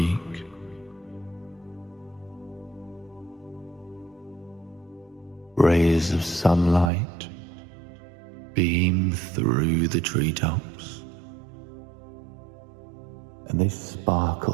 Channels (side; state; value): left; drops out; at 6.9 s